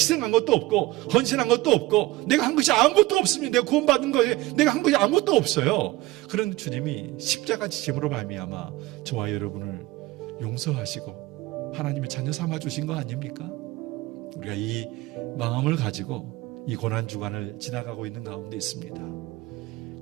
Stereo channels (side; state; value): left; quieter; 18.8 dB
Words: 것도 없고 헌신한 것도 없고 내가 한 것이 아무것도 없습니다. 내가 구원받은 거에 내가 한 것이 아무것도 없어요. 그런 주님이 십자가 지심으로 말미암아 저와 여러분을 용서하시고 하나님의 자녀 삼아 주신 거 아닙니까? 우리가 이 마음을 가지고 이 고난주간을 지나가고 있는 가운데 있습니다.